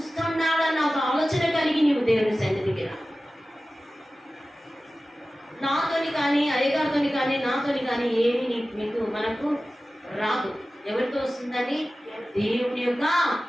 ఒక ఆలోచన కలిగి నీవు దేవుని సన్నిధికి రా. నాతోని కానీ, అయ్యగారితోని కానీ, నాతోని కానీ ఏమి మనకు రాదు. ఎవరితో వస్తుందని? దేవుని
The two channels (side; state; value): both; normal; correlation 0.96